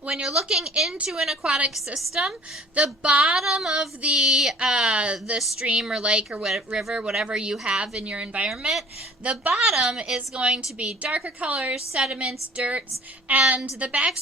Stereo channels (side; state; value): both; normal; correlation 0.51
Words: looking into an aquatic system, the bottom of the stream or lake or river, whatever you have in your environment, the bottom is going to be darker colors, sediments, dirts, and the